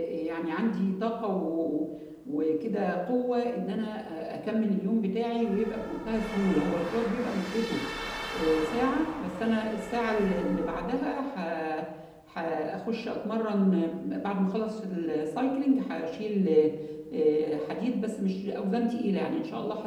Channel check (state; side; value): identical; both; correlation 1.00